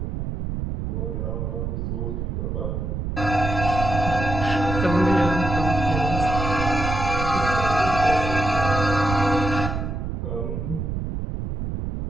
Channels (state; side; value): noise; right; rumble, 3 dB below the sound